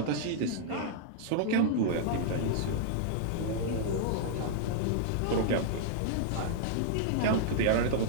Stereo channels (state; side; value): different; both; correlation -0.01